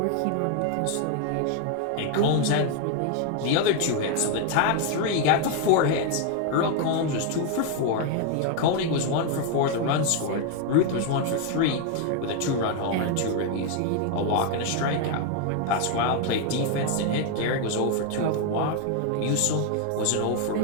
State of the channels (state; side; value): different; both; correlation 0.01